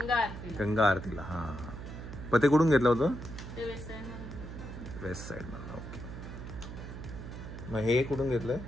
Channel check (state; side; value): noise; right; hum, 10 dB below the sound